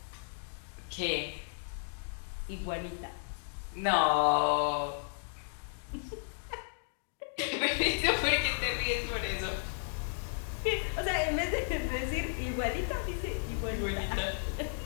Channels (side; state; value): right; silent; digital silence